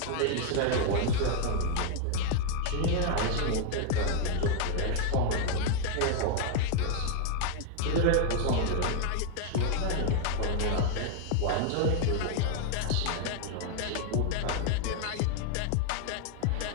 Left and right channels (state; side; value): different; both; correlation 0.00